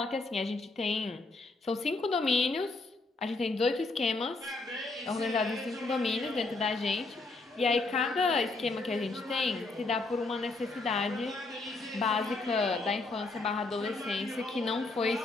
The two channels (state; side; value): quieter; right; 3.5 dB